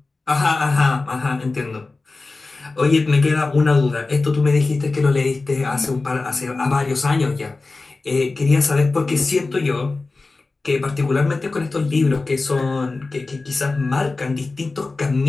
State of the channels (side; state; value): right; quieter; 3.6 dB